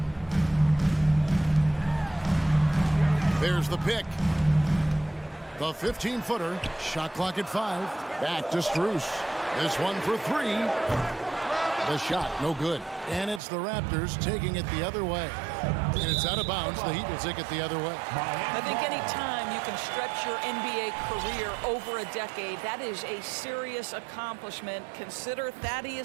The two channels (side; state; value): left; drops out; at 13.4 s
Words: There's the pick. The 15-footer. Shot clock at 5. Back to Strus. This one for 3. The shot, no good. And it's the Raptors taking it the other way. And it's out of bounds. The Heat will take it the other way. I think any time you can stretch your NBA career over a decade, that is a serious accomplishment. Consider